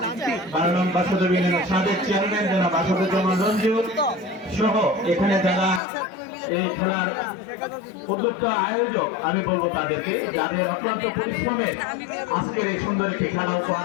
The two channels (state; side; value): drops out; right; at 5.8 s